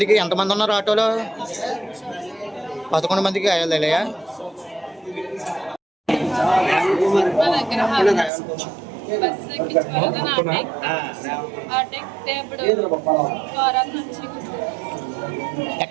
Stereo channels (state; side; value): drops out; left; at 8.3 s